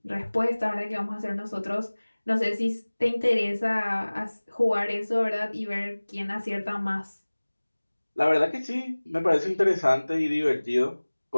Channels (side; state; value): both; inverted; correlation -1.00